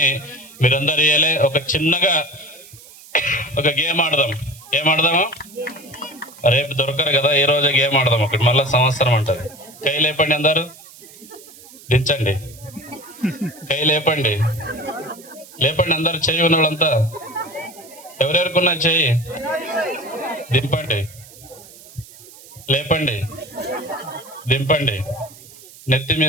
మీరందరూ ఇయ్యాలి. ఒక చిన్నగా ఒక గేమ్ ఆడదాం. ఏం ఆడదాము? రేపు దొరకరు కదా, ఈ రోజే గేమ్ ఆడదాం. ఒకటి మళ్ళీ సంవత్సరం అంటది. కై లేపండి, అందరు దించండి. కై లేపండి, లేపండి అందరు. చెయ్యి ఉన్న వాళ్ళంతా ఎవరెవరుకున్నా చెయ్యి దింపండి. లేపండి, దింపండి. నెత్తి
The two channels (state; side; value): noise; right; hiss, 20 dB below the sound